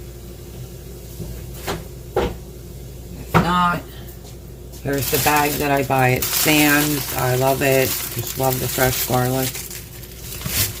not, here's the bag that I buy at Sam's. I love it. Just love the fresh garlic.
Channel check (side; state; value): both; identical; correlation 1.00